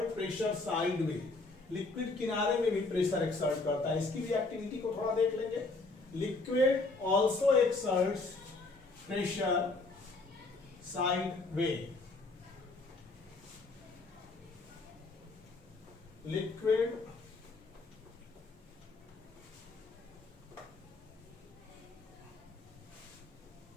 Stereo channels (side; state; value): right; quieter; 3.5 dB